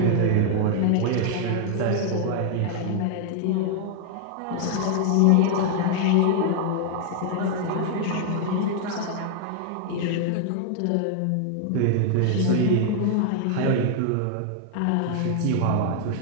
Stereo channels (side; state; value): both; different; correlation 0.00